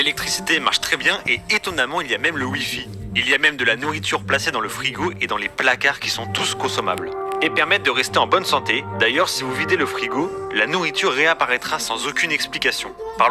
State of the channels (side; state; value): both; identical; correlation 1.00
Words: marche très bien et étonnamment il y a même le Wi-Fi. Il y a même de la nourriture placée dans le frigo et dans les placards qui sont tous consommables. Et permettent de rester en bonne santé. D'ailleurs, si vous videz le frigo, la nourriture réapparaîtra sans aucune explication.